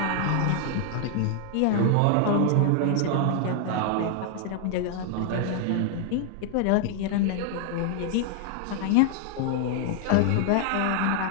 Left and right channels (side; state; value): both; different; correlation 0.00